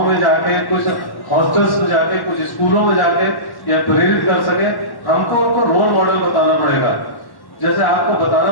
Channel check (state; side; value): late; right; 1.1 ms